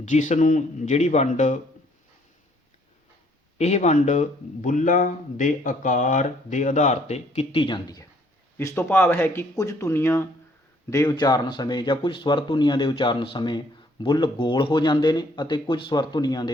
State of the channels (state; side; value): normal; both; correlation 0.64